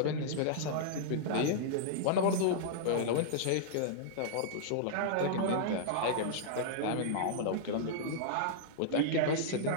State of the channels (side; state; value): both; different; correlation -0.02